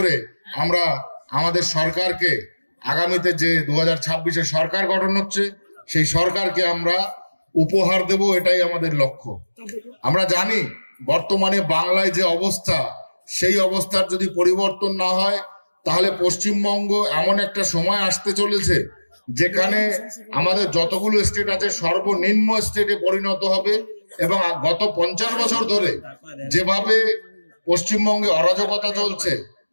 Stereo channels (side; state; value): both; inverted; correlation -1.00